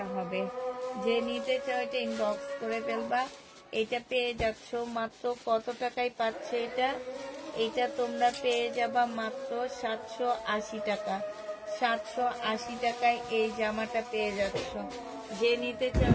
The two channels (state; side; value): identical; both; correlation 1.00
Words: হবে। যে নিতে চাও এটা ইনবক্স করে ফেলবা। এটা পেয়ে যাচ্ছ মাত্র কত টাকায় পাচ্ছে এটা? এটা তোমরা পেয়ে যাবা মাত্র 780 টাকা। 780 টাকায় এই জামাটা পেয়ে যাচ্ছ। যে নিতে চাও